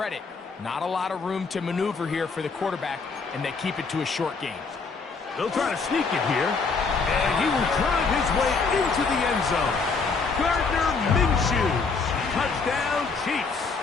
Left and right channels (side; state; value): right; quieter; 4.6 dB